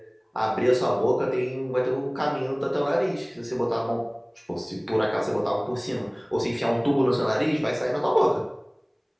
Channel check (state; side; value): identical; both; correlation 1.00